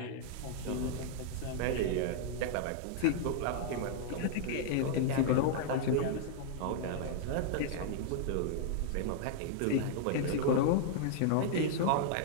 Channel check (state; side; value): different; both; correlation -0.01